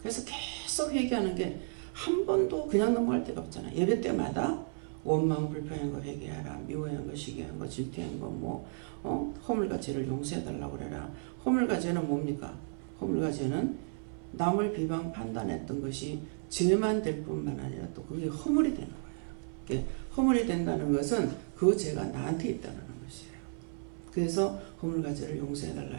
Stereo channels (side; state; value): left; silent; 56 dB below the other